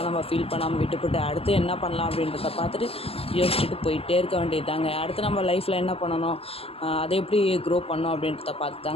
நம்ம ஃபீல் பண்ணாமல் விட்டுப்பட்டு அடுத்து என்ன பண்ணலாம் அப்படின்றத பார்த்துட்டு யோசிச்சுட்டு போயிட்டே இருக்க வேண்டியது தாங்க. அடுத்து நம்ம லைஃப்பில் என்ன பண்ணணும், அதை எப்படி க்ரோ பண்ணணும் அப்படின்றத பார்த்து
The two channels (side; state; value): right; late; 0.28 ms